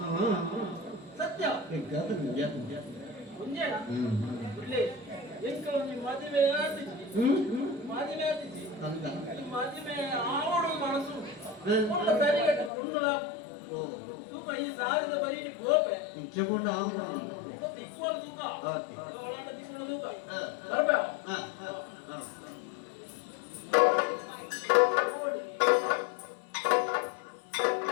ಸತ್ಯ ಮುಂಜಾನ ಇಲ್ಲೇ ಎಂಕಲ ನಿಮ್ಮ ಮದುವೆ ಆಡ್ತಿದ್ವಿ ಮದುವೆ ಆವಡು ಮನಸ್ಸು ಒಳ್ಳ ಸರಿಗಟ್ಟ ಕೊಂಡುಲ ತೂಕ ಈ ಸಾರಿದ ಬರೀ ಗೋಪೆ ತಿಕ್ಕೋಲ ತೂಕ ಒಳಾಟ ತಿಕ್ಕೋಲ ತೂಕ ಬರ್ಬೇ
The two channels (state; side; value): drops out; right; at 12.7 s